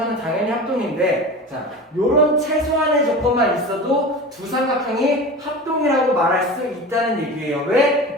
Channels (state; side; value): normal; both; correlation 0.32